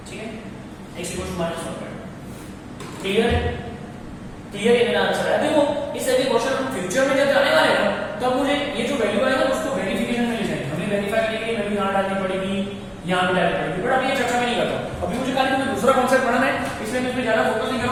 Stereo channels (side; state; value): both; identical; correlation 1.00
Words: ठीक है, x इक्वल टू -1/। क्लियर है, क्लियर है मेरा आंसर है। देखो इस ऐसे क्वेश्चन हम फ्यूचर में जब जाने वाले हैं तब मुझे ये जो वैल्यू आएगा उसको वेरिफिकेशन में ले जाएंगे, हमें वेरीफाई करने के लिए वैल्यू यहां डालनी पड़ेगी, यहां भी डालनी पड़ेगी, बट अभी ये चर्चा में नहीं करता। अभी मुझे खाली तुम्हें दूसरा कॉन्सेप्ट पढ़ना है, इसलिए मैं इसमें ज्यादा फोकस नहीं